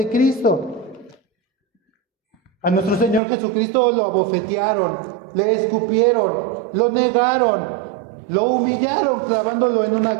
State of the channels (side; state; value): left; drops out; at 3.2 s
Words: Cristo. A nuestro Señor Jesucristo lo abofetearon, le escupieron, lo negaron, lo humillaron clavándolo en una